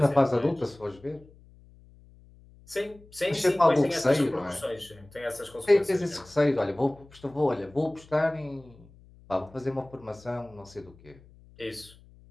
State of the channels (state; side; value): noise; left; hum, 25 dB below the sound